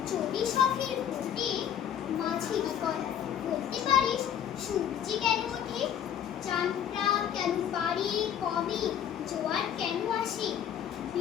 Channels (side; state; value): right; quieter; 9.4 dB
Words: চটি শখের ভোটে মাঝি কর বলতে পারিস সূর্যি কেন ওঠে, চাঁদটা কেন পারি কমে, জোয়ার কেন আসে।